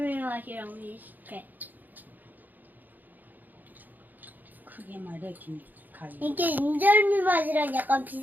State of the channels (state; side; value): late; left; 0.085 ms